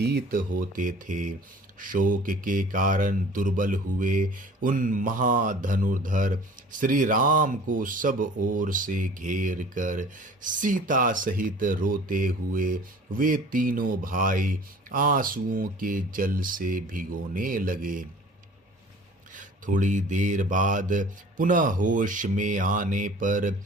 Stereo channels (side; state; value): both; normal; correlation 0.47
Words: होते थे। शोक के कारण दुर्बल हुए उन महाधनुर्धर श्री राम को सब ओर से घेर कर सीता सहित रोते हुए वे तीनों भाई आंसुओं के जल से भिगोने लगे। थोड़ी देर बाद पुनः होश में आने पर